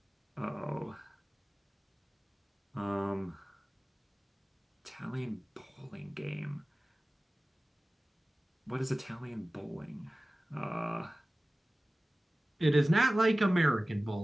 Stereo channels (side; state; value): both; normal; correlation 0.97